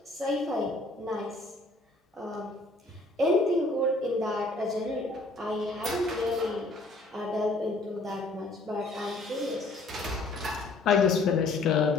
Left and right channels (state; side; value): quieter; right; 3.0 dB